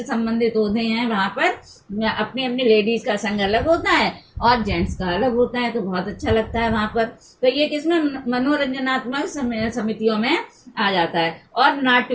संबंधित होते हैं, वहां पर अपनी अपनी लेडीज का संघ अलग होता है, और जेंट्स का अलग होता है, तो बहुत अच्छा लगता है वहां पर। तो ये किसमें मनोरंजनात्मक समितियों में आ जाता है। और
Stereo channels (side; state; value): both; identical; correlation 1.00